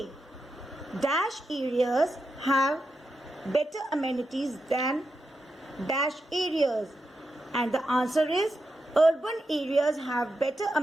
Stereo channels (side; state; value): both; normal; correlation 0.87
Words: Dash areas have better amenities than dash areas. And the answer is urban areas have better